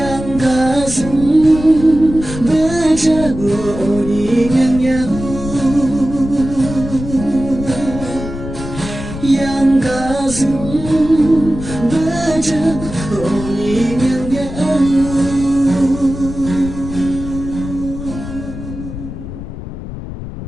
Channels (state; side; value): noise; left; rumble, 9 dB below the sound